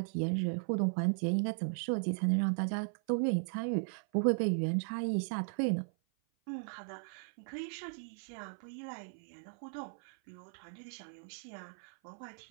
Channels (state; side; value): silent; left; 53 dB below the other